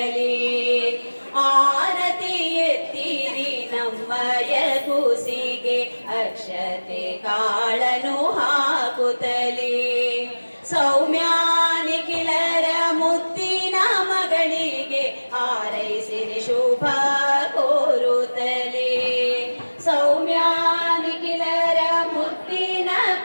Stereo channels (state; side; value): inverted; both; correlation -1.00